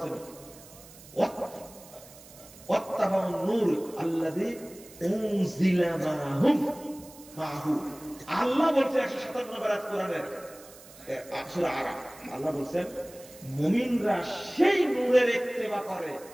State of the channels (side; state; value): right; noise; hiss, 20 dB below the sound